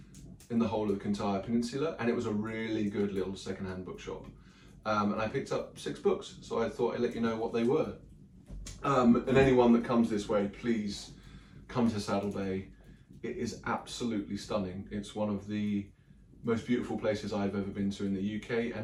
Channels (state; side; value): identical; both; correlation 1.00